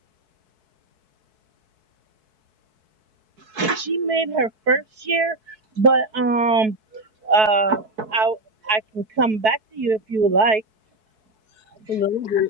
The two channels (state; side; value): late; left; 4.6 ms